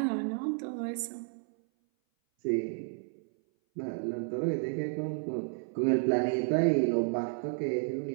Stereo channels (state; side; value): silent; left; 57 dB below the other